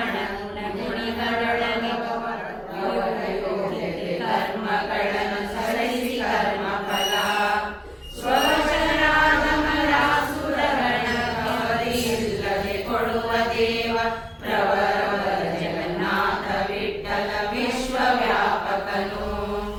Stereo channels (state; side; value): identical; both; correlation 1.00